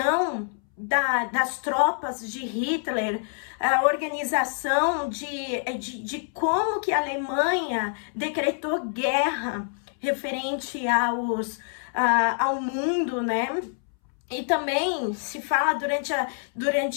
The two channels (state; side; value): silent; right; 61 dB below the other